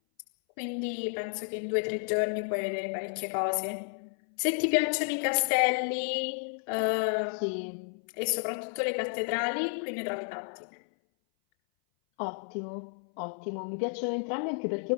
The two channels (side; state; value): right; silent; 57 dB below the other